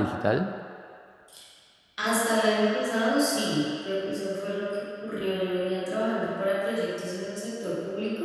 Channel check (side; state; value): both; identical; correlation 1.00